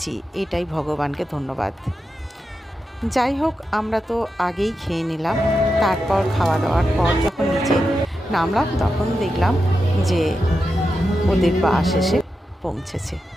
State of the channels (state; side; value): normal; both; correlation 0.89